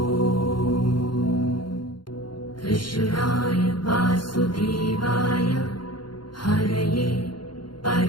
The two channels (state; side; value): late; right; 0.72 ms